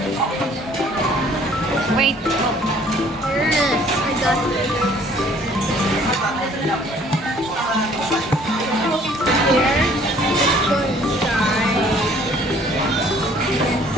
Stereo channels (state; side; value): normal; both; correlation 0.57